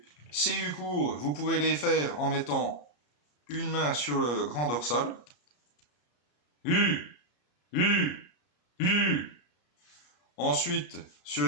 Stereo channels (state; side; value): late; right; 33 ms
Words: Ces U courts, vous pouvez les faire en mettant une main sur le grand dorsal. U, U, U. Ensuite, sur